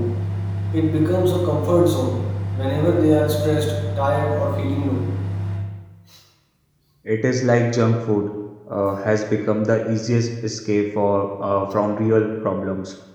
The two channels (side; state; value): both; identical; correlation 1.00